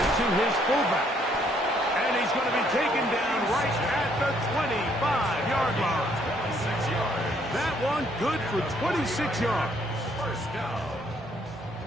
to his fullback. And he's going to be taken down right at the 25-yard line. 26 yards. That one good for 26 yards. First down.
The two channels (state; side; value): normal; both; correlation 0.67